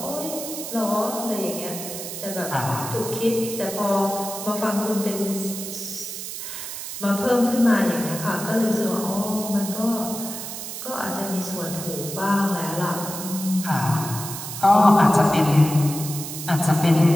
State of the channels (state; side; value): noise; right; hiss, 8 dB below the sound